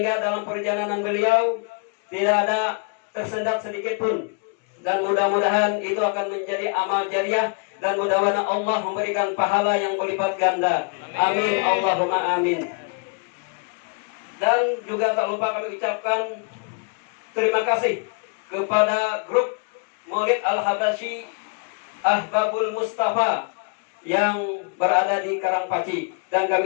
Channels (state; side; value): quieter; right; 35.1 dB